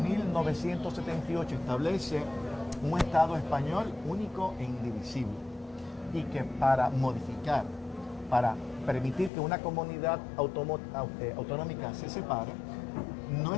establece un Estado español único e indivisible, y que para modificar, para permitir que una comunidad autonómica se separe, no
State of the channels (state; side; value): drops out; right; at 9.3 s